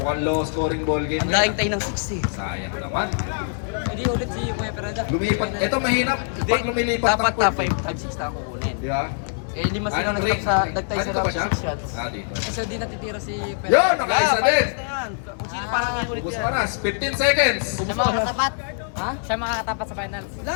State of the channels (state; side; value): silent; right; digital silence